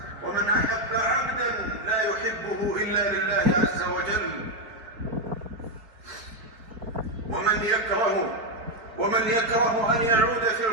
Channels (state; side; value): late; left; 4.3 ms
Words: ومن أحب عبدا لا يحبه إلا لله عز وجل، ومن يكره أن يعود في